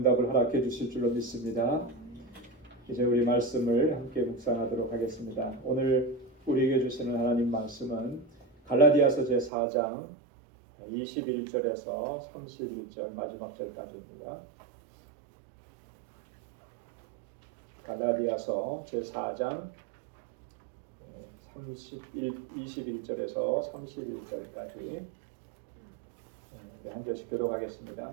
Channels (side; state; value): left; drops out; at 9.5 s